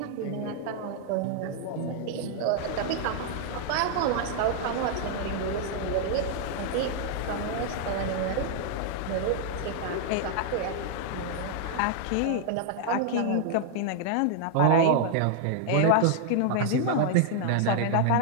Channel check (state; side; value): different; both; correlation 0.00